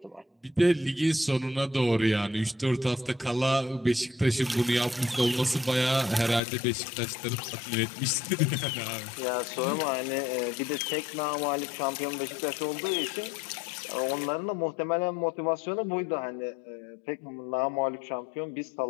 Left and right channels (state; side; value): drops out; right; at 6.4 s